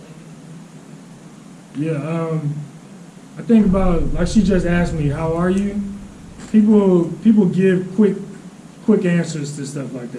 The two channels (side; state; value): both; identical; correlation 1.00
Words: like? Yeah, I think about, like she just asked me, how are you? People give quick answers to stuff like